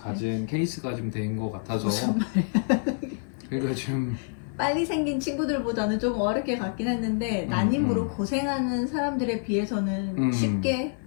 케이스가 좀 된 것 같아서 무슨 말이야. 그러니까 좀 빨리 생긴 친구들보다는 좀 어렵게 갔긴 했는데 난임으로 고생하는 사람들에 비해서는 쉽게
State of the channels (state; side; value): silent; right; digital silence